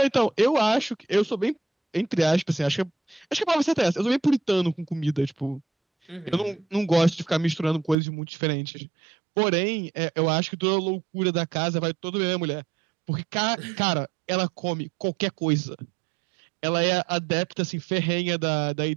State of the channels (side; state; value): left; drops out; at 8.0 s